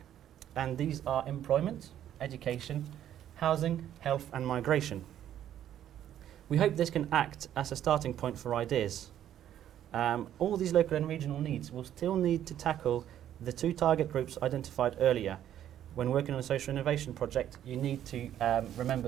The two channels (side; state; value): left; quieter; 11.0 dB